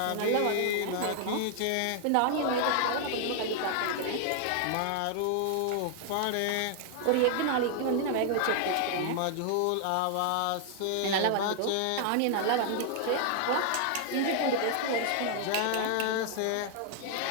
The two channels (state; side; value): different; both; correlation 0.00